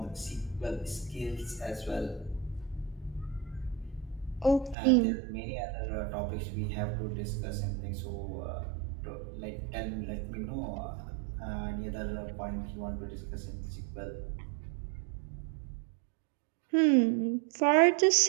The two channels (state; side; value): drops out; left; at 4.8 s